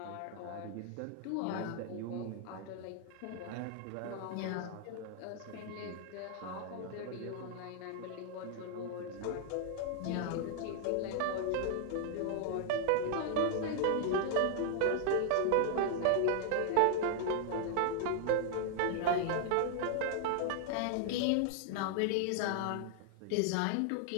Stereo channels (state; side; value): different; both; correlation 0.00